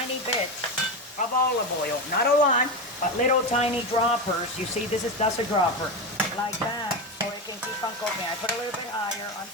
bits of olive oil, not a lot, but little tiny droppers. You see, that's a dropper, like that, so it can keep on cooking. I put a little bit higher on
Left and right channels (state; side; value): normal; both; correlation 0.17